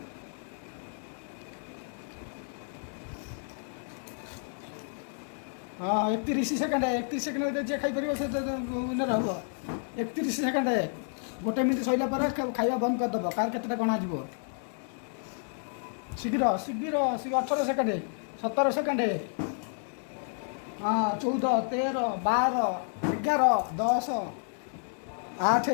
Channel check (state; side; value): silent; right; 58 dB below the other